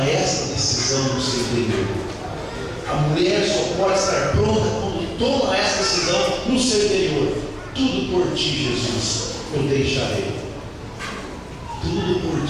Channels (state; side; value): identical; both; correlation 1.00